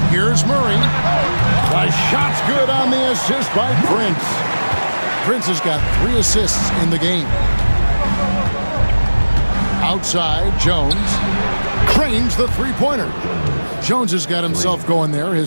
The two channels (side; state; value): both; inverted; correlation -1.00